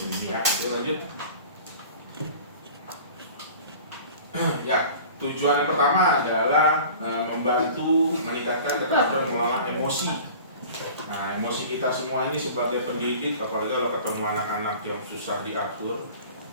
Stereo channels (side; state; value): both; inverted; correlation -0.42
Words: Ya, lanjut. Ya, tujuan yang pertama adalah membantu meningkatkan keterampilan mengelola emosi. Nah, emosi kita semua ini sebagai pendidik, apalagi kalau ketemu anak-anak yang susah diatur,